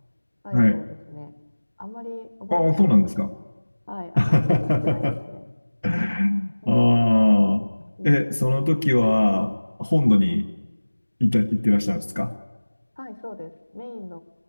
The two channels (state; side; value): inverted; both; correlation -1.00